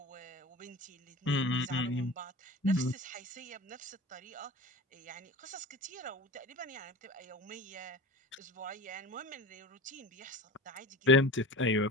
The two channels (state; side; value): normal; both; correlation 0.35